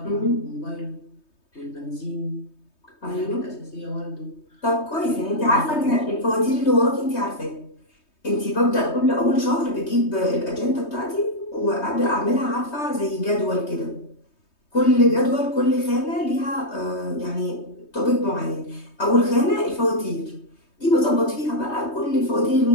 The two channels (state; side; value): late; right; 3.2 ms